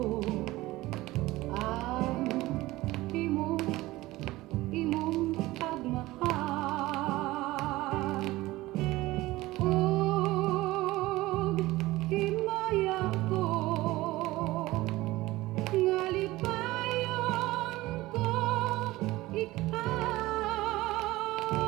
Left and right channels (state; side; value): quieter; left; 18.5 dB